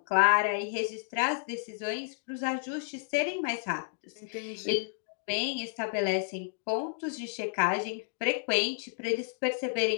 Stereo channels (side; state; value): right; silent; digital silence